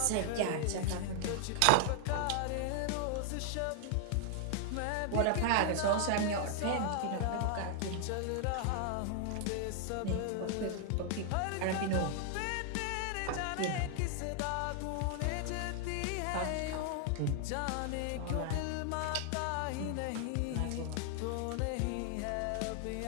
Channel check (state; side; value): different; both; correlation 0.00